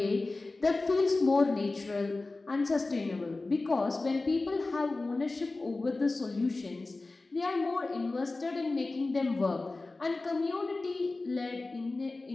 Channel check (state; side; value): quieter; right; 3.3 dB